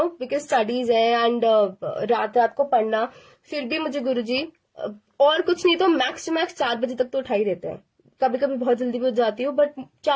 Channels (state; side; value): identical; both; correlation 1.00